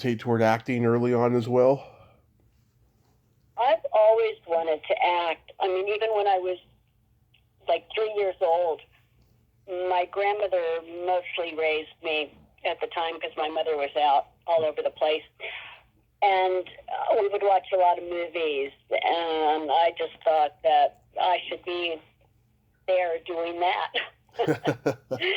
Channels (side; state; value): both; identical; correlation 1.00